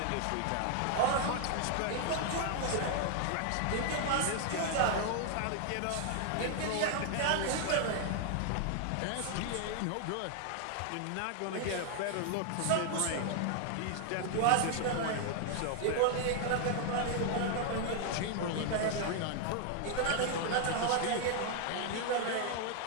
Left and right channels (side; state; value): both; different; correlation 0.00